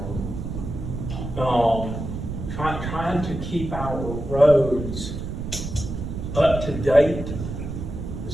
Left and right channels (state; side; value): noise; right; rumble, 6 dB below the sound